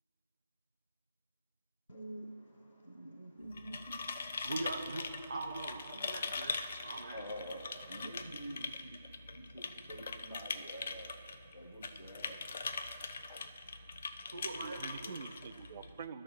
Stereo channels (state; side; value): inverted; both; correlation -0.79